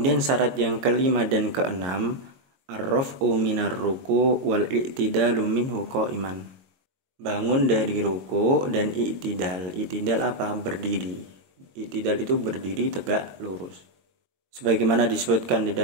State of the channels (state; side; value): late; left; 22 ms